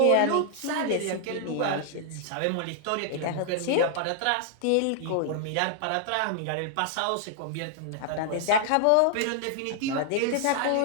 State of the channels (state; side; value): different; both; correlation -0.01